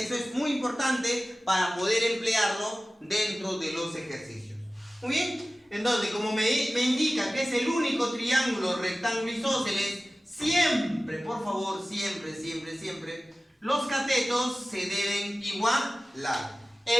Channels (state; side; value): normal; both; correlation 0.96